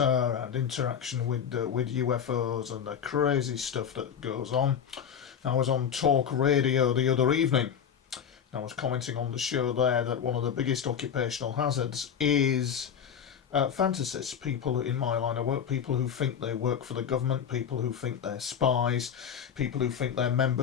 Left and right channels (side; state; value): right; quieter; 7.9 dB